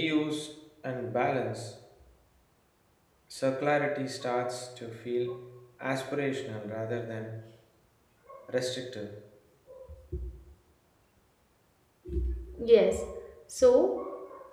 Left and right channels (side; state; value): both; identical; correlation 1.00